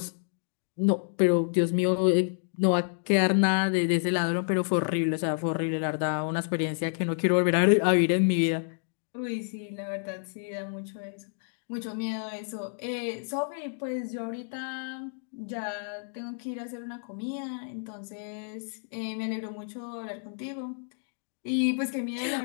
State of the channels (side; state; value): right; silent; digital silence